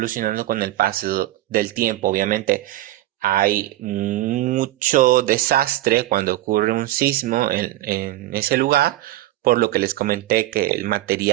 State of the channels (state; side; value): quieter; left; 15.6 dB